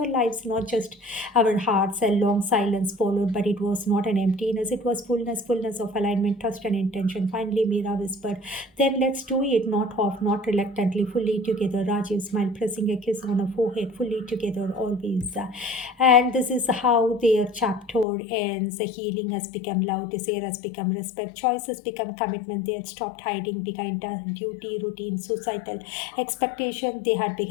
lives, not just our hearts. A long silence followed, but it was not an emptiness, it was fullness of alignment, trust, and intention. Finally, Meera whispered, then let's do it, not half, not reluctantly, fully together. Rajiv smiled, pressing a kiss on her forehead, fully together, always. And this is how their chapter ends. The healing has become love, desire has become respect, choice has become commitment. They had stopped hiding behind duty, routine, societal expectation. They had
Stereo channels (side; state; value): right; drops out; at 18.1 s